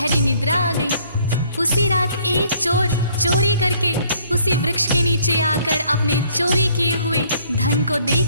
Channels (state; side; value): inverted; both; correlation -0.62